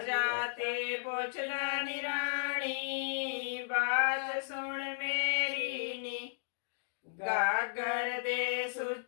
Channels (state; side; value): silent; right; digital silence